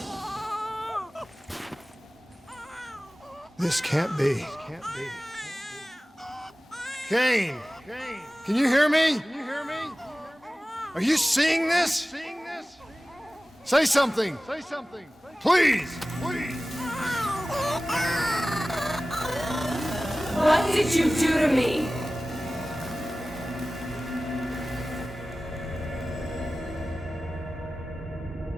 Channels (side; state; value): both; normal; correlation 0.96